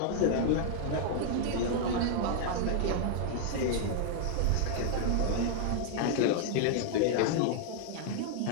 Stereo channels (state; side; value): different; both; correlation 0.00